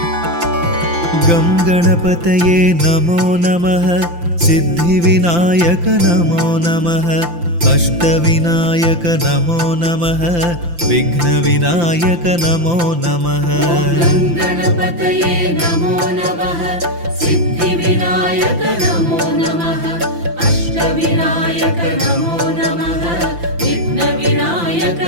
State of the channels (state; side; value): late; left; 5.8 ms